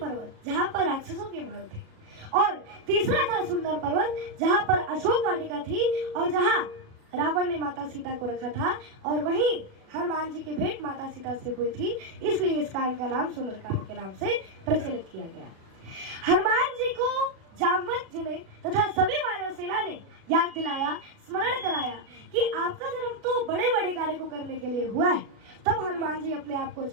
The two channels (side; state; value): left; late; 36 ms